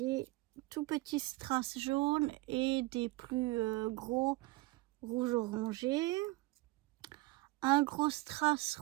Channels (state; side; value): quieter; left; 21.6 dB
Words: tout petits strass jaunes et des plus gros rouge orangé. Un gros strass